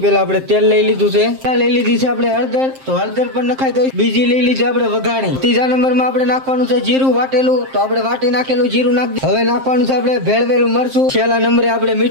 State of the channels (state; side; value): late; left; 7.6 ms